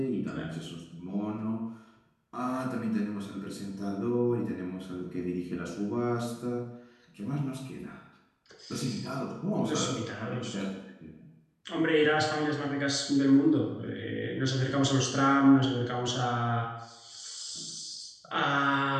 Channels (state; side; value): identical; both; correlation 1.00